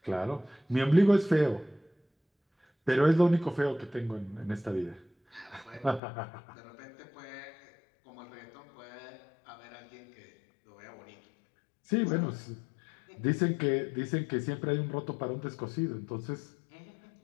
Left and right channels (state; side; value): drops out; right; at 6.0 s